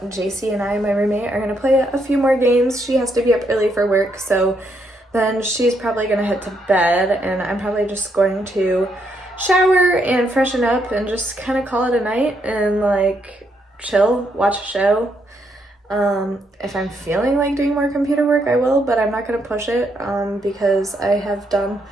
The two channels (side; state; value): both; normal; correlation 0.76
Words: JC and I, my roommate, are gonna play a few more games. She has to be up early for work, so then she's probably gonna head to bed, and I'm probably just going to shower and freshen up and just kind of call it a night and like chill, watch a show. If I'm feeling like doing more computer work, I will, but I'm not gonna push it because I have done